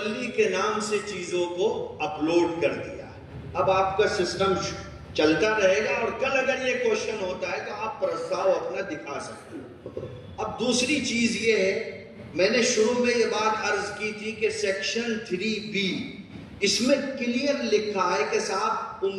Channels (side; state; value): both; identical; correlation 1.00